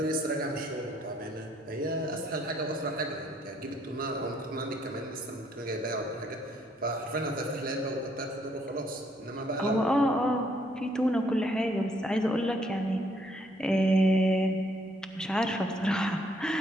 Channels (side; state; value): both; normal; correlation 0.68